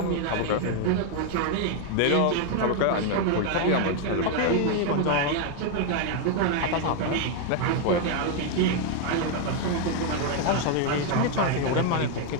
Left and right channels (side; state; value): both; different; correlation 0.01